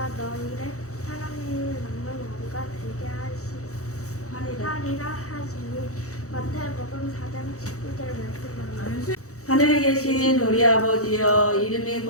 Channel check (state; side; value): late; right; 0.65 ms